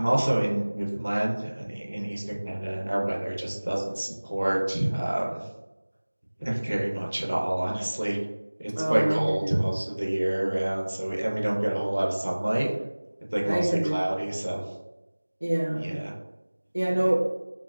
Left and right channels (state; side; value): inverted; both; correlation -1.00